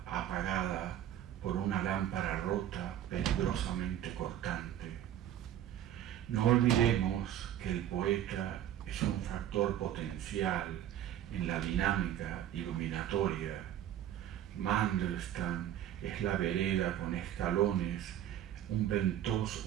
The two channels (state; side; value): quieter; left; 11.3 dB